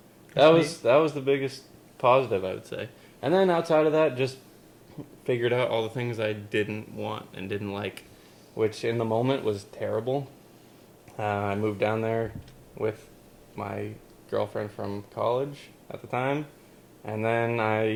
that was the biggest positive, I would say. And then outside of that, just figured out all the things I didn't want and didn't like, which in the moment was terrible. I moved down there with my girlfriend from college at the time, and then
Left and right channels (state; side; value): identical; both; correlation 1.00